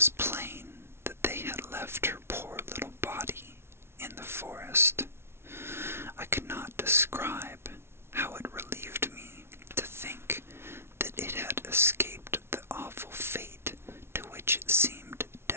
plain that they had left her poor little body in the forest. I could not describe how it relieved me to think that it had escaped the awful fate to which it seemed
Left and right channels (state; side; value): late; left; 0.12 ms